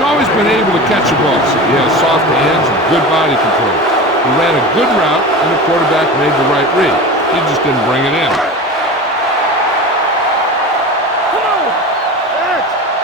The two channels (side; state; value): both; normal; correlation 0.30